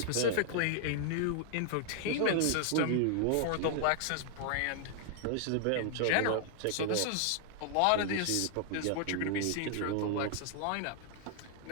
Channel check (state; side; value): different; both; correlation 0.00